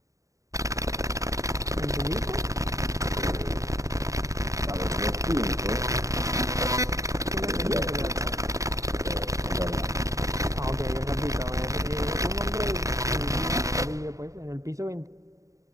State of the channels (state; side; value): late; left; 0.16 ms